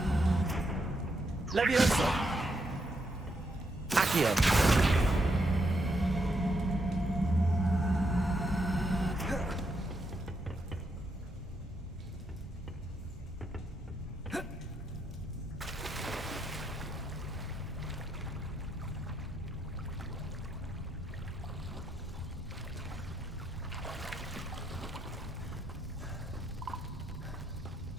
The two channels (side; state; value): both; normal; correlation 0.79